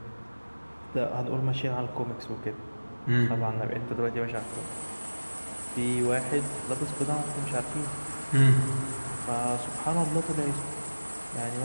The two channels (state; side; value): inverted; both; correlation -1.00